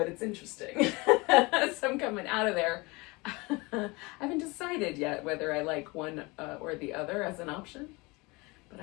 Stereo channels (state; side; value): quieter; right; 25.1 dB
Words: it's interesting. So I'm coming out of there. I haven't decided yet whether I like one or the other as an option, but